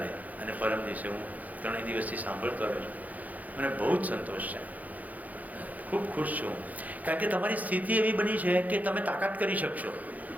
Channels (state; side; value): late; left; 0.078 ms